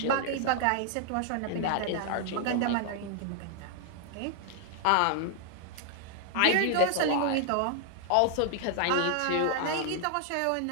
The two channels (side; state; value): both; different; correlation 0.00